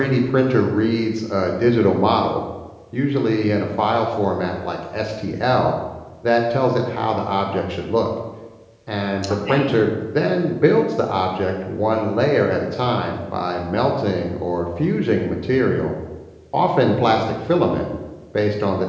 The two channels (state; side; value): identical; both; correlation 1.00